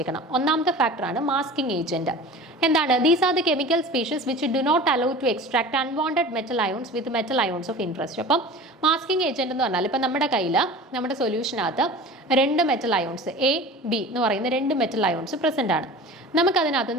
ഒന്നാമത്തെ ഫാക്ടറാണ് മാസ്കിംഗ് ഏജന്റ്. എന്താണ്? These are the chemical species which do not allow to extract unwanted metal ions with metal ions of interest. അപ്പം മാസ്കിംഗ് ഏജന്റ് എന്ന് പറഞ്ഞാൽ ഇപ്പം നമ്മുടെ കയ്യിൽ നമ്മുടെ സൊല്യൂഷനകത്ത് രണ്ട് മെറ്റൽ അയോൺസ് A, B എന്ന് പറയുന്ന രണ്ട് മെറ്റൽ അയോൺസ് പ്രസൻ്റ് ആണ്. നമുക്കതിനകത്ത്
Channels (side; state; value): both; normal; correlation 0.38